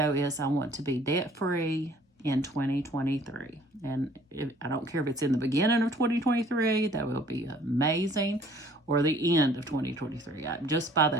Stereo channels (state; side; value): normal; both; correlation 0.56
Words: is I want to be debt-free in 2023. And I don't care if it's in the beginning of 2023, that will be amazing, or the end of 2023. Just by